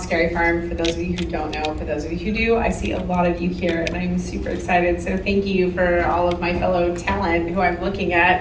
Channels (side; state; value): both; identical; correlation 1.00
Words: Scary Farm, for those of you who don't know. For those of you who do, I see a lot of you here, and I'm super excited. So thank you for all of my fellow talent who I'm looking